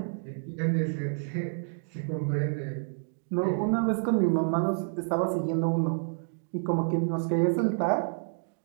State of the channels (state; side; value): silent; left; digital silence